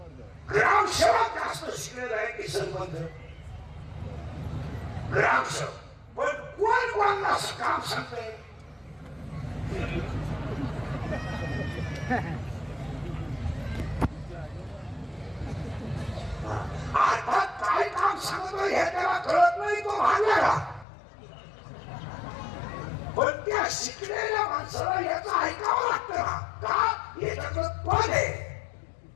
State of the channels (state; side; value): drops out; right; at 20.9 s